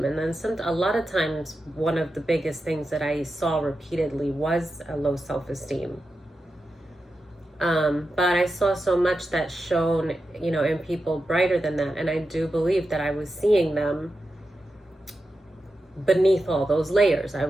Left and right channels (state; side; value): normal; both; correlation 0.90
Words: And then a lot of times, one of the biggest things that I saw repeatedly was a low self-esteem. But I saw so much that shone, in people brighter than that. And I do believe that I was seeing them beneath all those layers. I